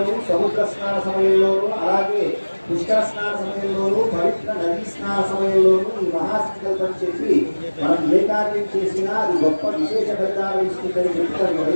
సముద్ర స్నాన సమయంలోనూ అలాగే పుష్కర స్నాన సమయంలోనూ పవిత్ర నదీ స్నాన సమయంలోనూ ఈ మహాసంకల్పం చెప్పి మనం ఏకా కార్యం చేసినా అది గొప్ప విశేష ఫలితాలు ఇస్తుందని చెప్తారు.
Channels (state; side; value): inverted; both; correlation -1.00